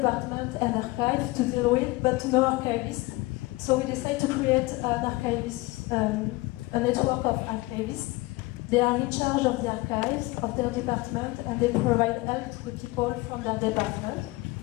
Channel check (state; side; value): quieter; right; 21.5 dB